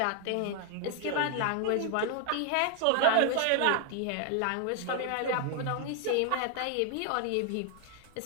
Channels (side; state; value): both; different; correlation 0.00